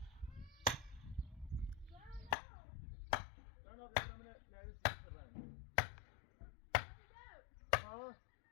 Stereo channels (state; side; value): drops out; right; at 2.4 s